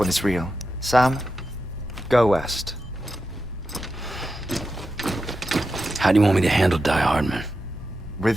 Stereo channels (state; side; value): normal; both; correlation 0.89